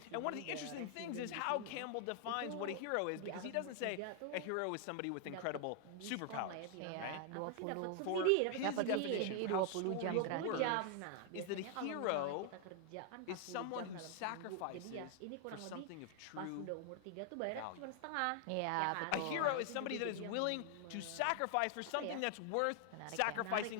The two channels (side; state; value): both; different; correlation 0.00